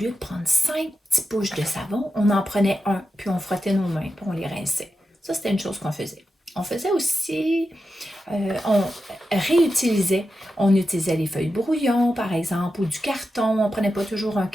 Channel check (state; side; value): normal; both; correlation 0.90